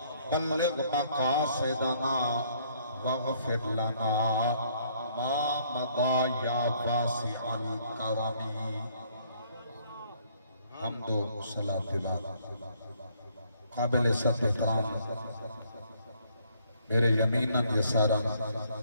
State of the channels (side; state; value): both; inverted; correlation -0.65